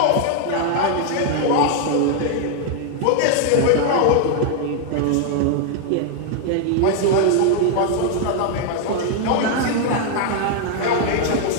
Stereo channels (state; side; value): different; both; correlation 0.00